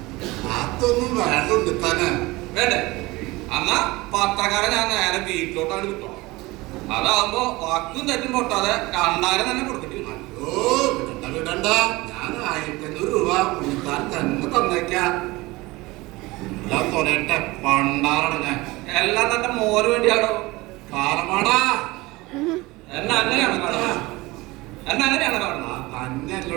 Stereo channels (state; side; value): quieter; left; 21.4 dB